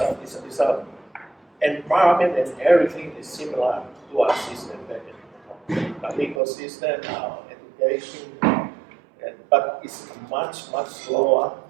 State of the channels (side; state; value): left; drops out; at 6.4 s